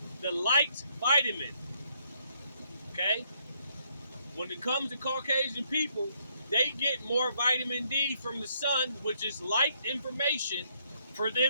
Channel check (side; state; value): both; inverted; correlation -0.72